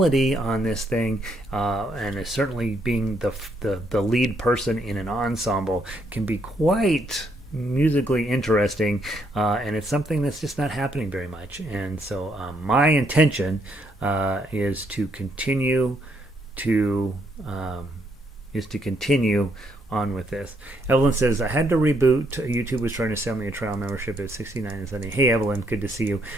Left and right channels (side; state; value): both; normal; correlation 0.73